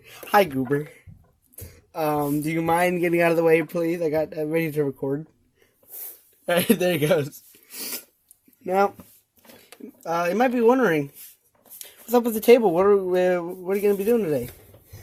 Hi Goober. Do you mind getting out of the way, please? I got ready to record. Alright, there he goes. Now, you might be wondering, what's up with the table? What are you gonna be doing today?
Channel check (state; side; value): identical; both; correlation 1.00